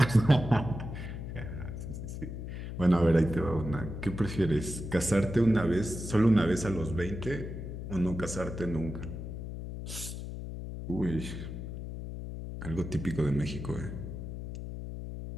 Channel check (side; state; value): left; noise; hum, 7 dB below the sound